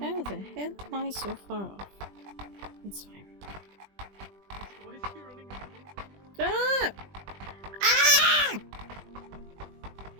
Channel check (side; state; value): left; late; 20 ms